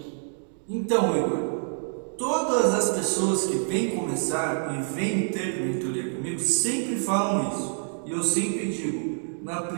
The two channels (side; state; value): left; silent; digital silence